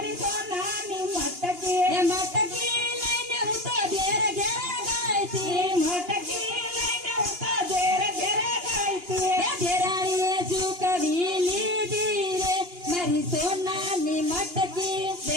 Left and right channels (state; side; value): late; left; 2.8 ms